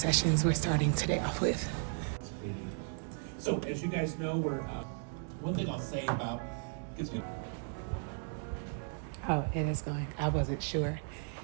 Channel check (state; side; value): silent; left; 54 dB below the other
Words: we're starting today off with. So as you guys know, we're one thing I'll say about Oh, it is going. I wasn't sure